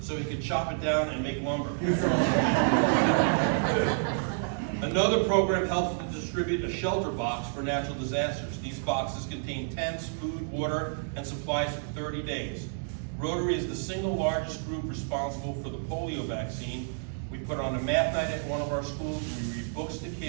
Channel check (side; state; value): left; silent; digital silence